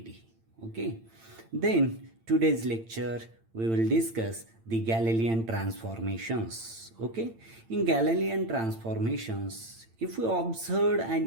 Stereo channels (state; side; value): late; left; 8.9 ms